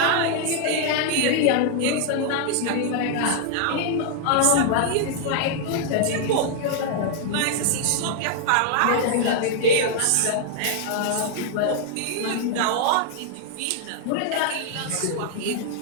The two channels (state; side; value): different; both; correlation 0.00